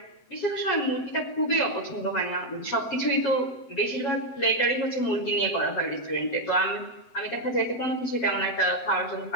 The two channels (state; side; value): late; right; 7.9 ms